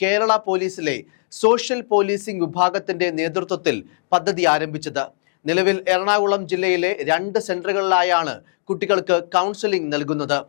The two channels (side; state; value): right; silent; digital silence